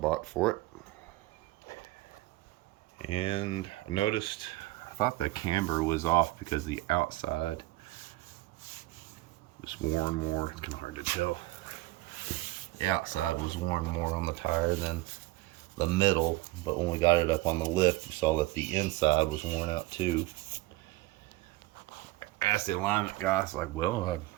for it. And I noticed, I thought the camber was off because the outside was worn more. It's kind of hard to tell. The outside was worn more on the tire than the middle, but when we got it up on the lift, you saw that the inside was worn out too. Asked the alignment guy, I was like, well,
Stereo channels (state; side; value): quieter; left; 19.0 dB